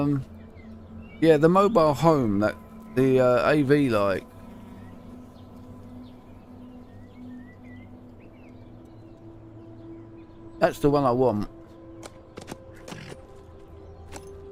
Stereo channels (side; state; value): both; identical; correlation 1.00